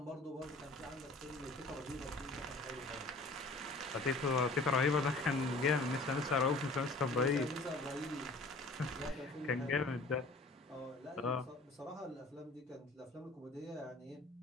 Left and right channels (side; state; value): right; quieter; 3.0 dB